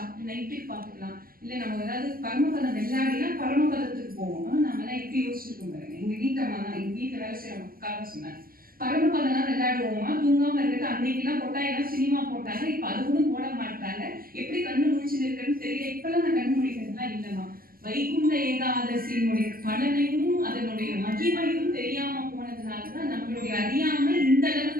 நைட்டுக்கு பார்த்துக்கலாம். இல்லை நம்ம ஏதாவது பரமபதம் வெள்ளாடினா பரமபதத்துக்கு போவோம். நம்ம எல்லாம் எப்படி யோசிச்சிருக்கோம் பாருங்க. எங்க வீட்டம்மா தான், எங்க வீட்டில் வேலை செய்யற மக்களாக சொன்னாங்க, பரமபதம்லாம் விளையாடுவோமா, தூங்காம இருக்கிறது. அன்னைக்கெல்லாம் கொட்டாயெல்லாம் சினிமா போட்டாங்க, இப்ப அது கூட போட மாட்டாங்க. எப்படி கண்ணு முடிச்சுட்டு இருக்குன்னு தெரியல. இப்பெல்லாம் நான் கண்ணு முடிக்கிறதுலாம் இல்லைம்மா. வைகுண்ட ஏகாதசியினுடைய பலனையும் அதனுடைய மகிமையும் தெரியாம போனதுனாலதான் நம்மளுடைய அறியாமை இந்த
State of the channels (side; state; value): left; late; 0.42 ms